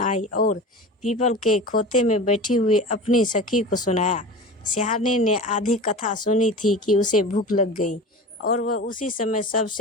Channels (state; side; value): normal; both; correlation 0.33